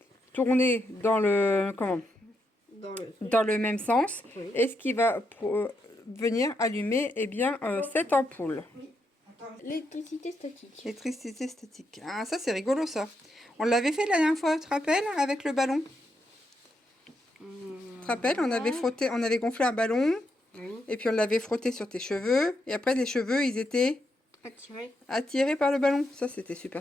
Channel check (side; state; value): both; normal; correlation 0.81